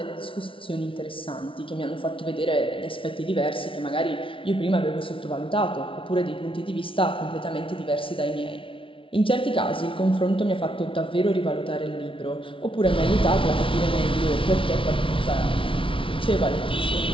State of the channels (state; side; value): late; right; 0.25 ms